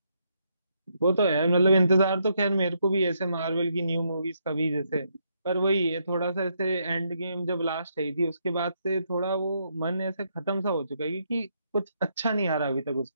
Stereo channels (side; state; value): both; inverted; correlation -0.76